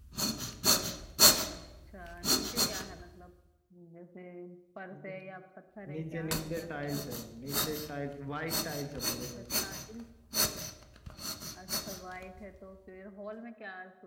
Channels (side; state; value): both; identical; correlation 1.00